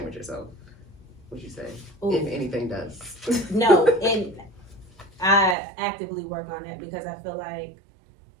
with yourself? Would you say, if anything does? No, and I actively work on that because I feel like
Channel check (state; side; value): drops out; left; at 5.6 s